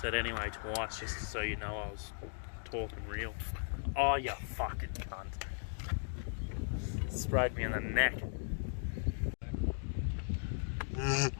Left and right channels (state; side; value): silent; right; digital silence